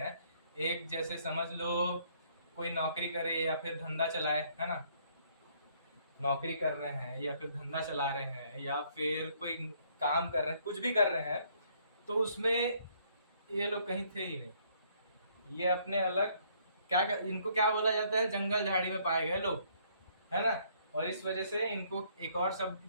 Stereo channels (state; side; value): inverted; both; correlation -0.65